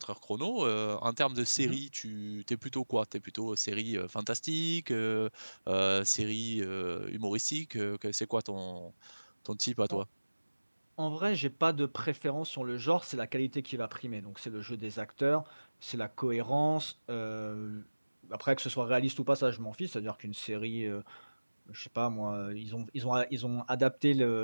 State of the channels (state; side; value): inverted; both; correlation -1.00